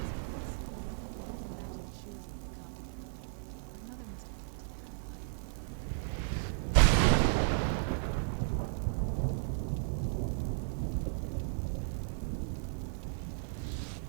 place. I can't imagine choosing to come here. My mother must have been terrified.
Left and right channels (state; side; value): silent; left; 54 dB below the other